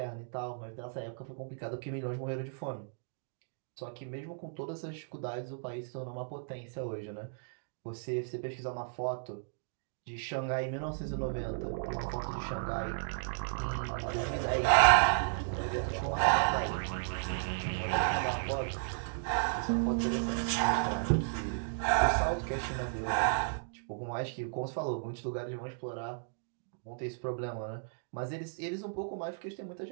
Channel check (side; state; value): left; silent; digital silence